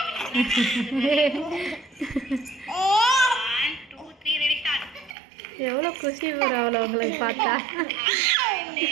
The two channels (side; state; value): left; drops out; at 5.2 s